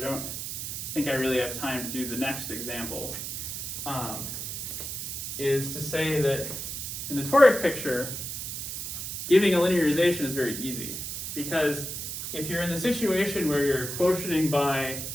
think I really have time to do the next example, is to say that in the toric picture, giving a linearization is very easy, because if you're in the situation where you're quotienting by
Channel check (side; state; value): right; noise; hiss, 5 dB below the sound